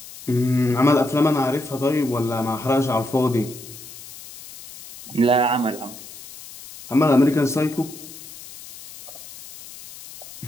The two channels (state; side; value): noise; left; hiss, 16 dB below the sound